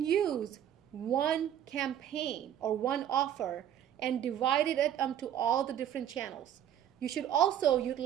use one campaign or one offer and divide it up to all the different channels. You should also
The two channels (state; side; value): quieter; left; 10.4 dB